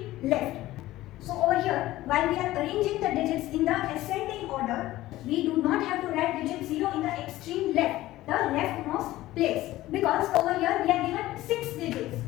left. So over here, while we are arranging the digits in the ascending order, we do not have to write digit 0 in the extreme left, the leftmost place, because over here we are given 6 digits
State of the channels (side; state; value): right; quieter; 16.2 dB